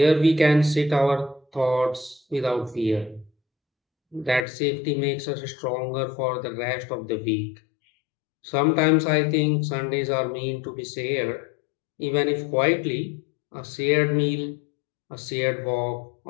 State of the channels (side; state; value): right; drops out; at 4.5 s